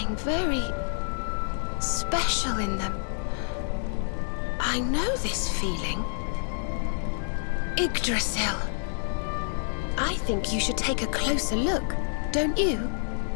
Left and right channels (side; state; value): right; silent; digital silence